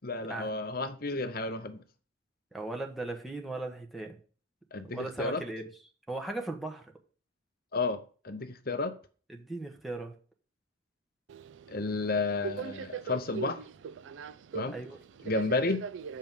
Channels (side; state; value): both; normal; correlation 0.13